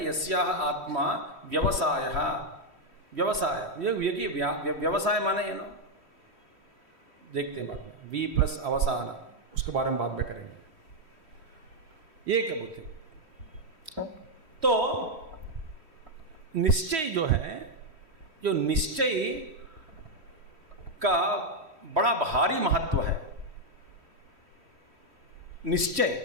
यस्याः आत्मा व्यवसाय, व्यवसाय ये व्यवसाय माने ये ना, देखते हैं बाद में, वी प्लस अवसान, उसके बारे में बाद में करेंगे। ये क्या बुद्धि? तो निश्चय जो है, जो निश्चय का बड़ा भारी महत्व है।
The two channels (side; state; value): left; late; 3.1 ms